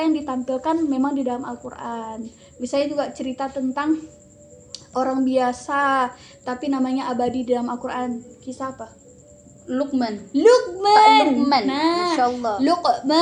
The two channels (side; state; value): both; identical; correlation 1.00